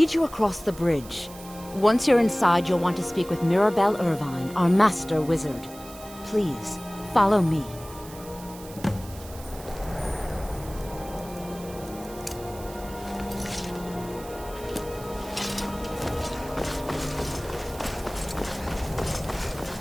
you across the bridge. Once you're inside, you'll want to speak with Mirabelle Irvine, our master wizard. Please, follow me.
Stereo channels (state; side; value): noise; right; hiss, 17 dB below the sound